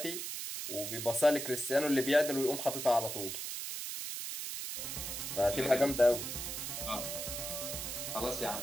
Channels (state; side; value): noise; right; hiss, 5 dB below the sound